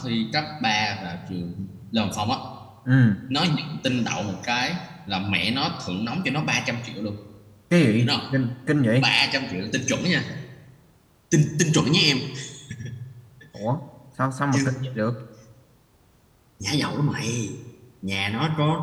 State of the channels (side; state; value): both; identical; correlation 1.00